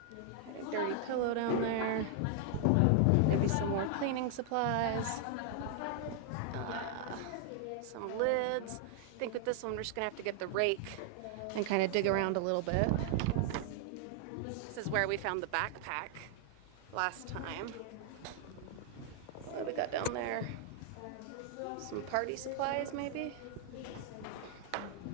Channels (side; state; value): both; different; correlation 0.00